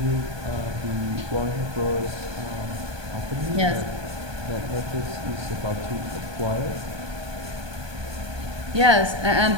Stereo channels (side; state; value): left; late; 1.2 ms